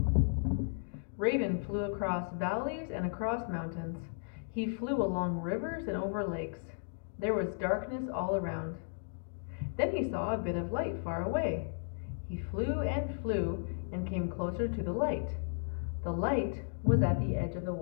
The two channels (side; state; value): right; silent; digital silence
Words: Raven flew across valleys and across mountains. He flew along rivers and over lakes. There was darkness all around. Then he saw a bit of light far away. He flew and came closer to the light. The light was at the edge of the